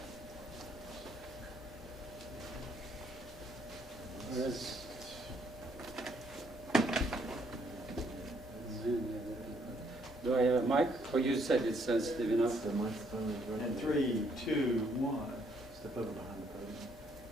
Do I have a mic? Or you said it's sensitive enough? The microphone is right. And 3, 2, 1. Step over behind the podium.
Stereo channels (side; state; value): both; normal; correlation 0.69